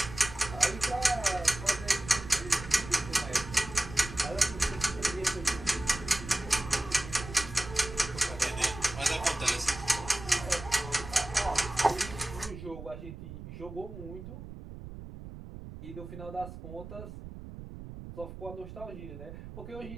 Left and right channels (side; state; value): right; noise; rumble, 12 dB below the sound